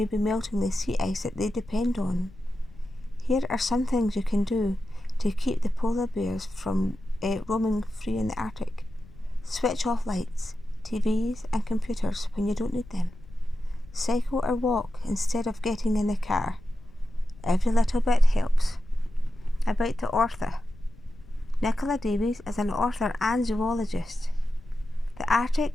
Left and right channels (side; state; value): left; noise; rumble, 21 dB below the sound